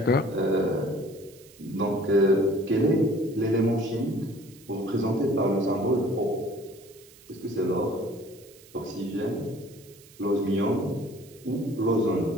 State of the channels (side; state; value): right; noise; hiss, 24 dB below the sound